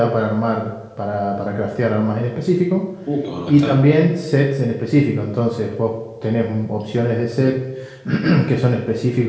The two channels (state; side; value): identical; both; correlation 1.00